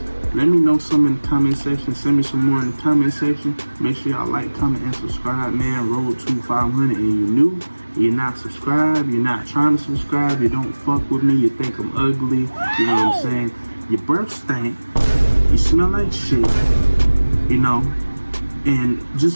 let me know some in the comment section. Send me some more in the comment section. Make sure y'all like, comment, and subscribe, man. Road to 500, and you're new, you're not subscribed, you're not trying to subscribe, you don't fuck with me, you think I'm ugly, you know what I'm saying? Your breath stink, you smell like shit, you know, and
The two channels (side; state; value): both; inverted; correlation -1.00